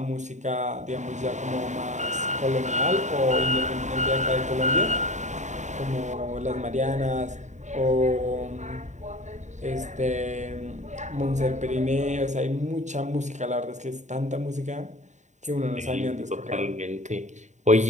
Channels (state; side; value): late; left; 0.34 ms